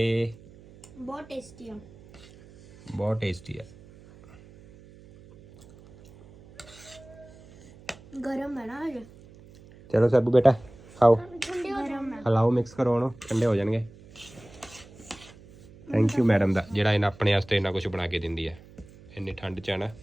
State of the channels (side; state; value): right; noise; hum, 22 dB below the sound